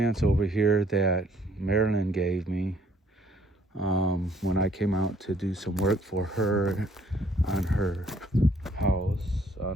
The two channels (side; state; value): both; normal; correlation 0.63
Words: over here that Marilyn gave me when I came out to do some work for her on her house,